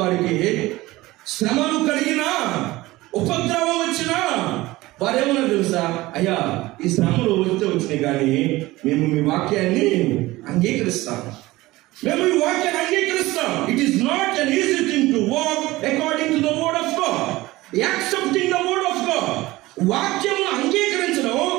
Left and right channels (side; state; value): left; quieter; 19.0 dB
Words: శ్రమలు కలిగినా, ఉపద్రవం వచ్చినా వారేమన్నా తెలుసా? అయ్యా, ఈ శ్రమలు వస్తే వచ్చినాయి కానీ మేము మీ వాక్యాన్ని అంగీకరిస్తాం, మేము ఈ వాక్యాన్ని అంగీకరిస్తాం. It is not an easy thing to walk according to the word of God, accepting the word of God. వాక్యమును అంగీకరించడం,